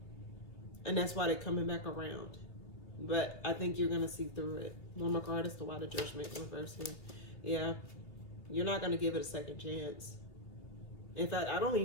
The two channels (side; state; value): right; late; 2.9 ms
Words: And that's why they're coming back around. But I think you're going to see through it. One more card is the Why the Judgment reverse here. Yeah. You're not going to give it a second chance. In fact, I don't